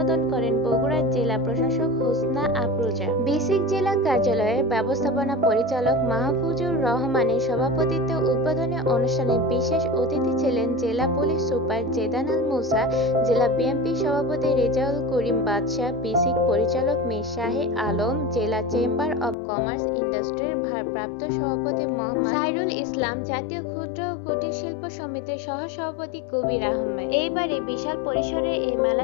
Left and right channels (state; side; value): drops out; right; at 19.4 s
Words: করেন বগুড়ার জেলা প্রশাসক হোসনা আফরোজা। বিসিক জেলা কার্যালয়ের ব্যবস্থাপনা পরিচালক মাহফুজুর রহমানের সভাপতিত্বে উদ্বোধনী অনুষ্ঠানে বিশেষ অতিথি ছিলেন জেলা পুলিশ সুপার জেদান আল মুসা, জেলা বিএনপি সভাপতি রেজাউল করিম বাদশাহ, বিসিক পরিচালক মীর শাহে আলম, জেলা চেম্বার অব কমার্স ইন্ডাস্ট্রির ভারপ্রাপ্ত সভাপতি মোহাম্মদ সাইরুল ইসলাম, জাতীয় ক্ষুদ্র ও কুটির শিল্প সমিতির সহসভাপতি কবির আহমেদ। এইবারে বিশাল পরিসরে এই